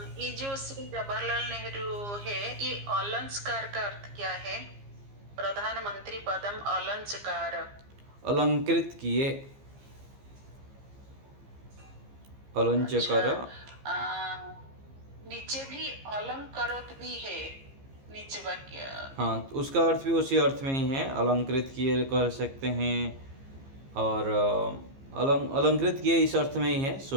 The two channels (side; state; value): left; late; 15 ms